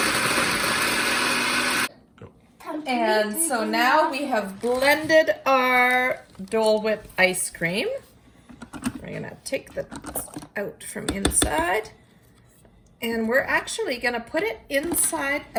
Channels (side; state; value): both; identical; correlation 1.00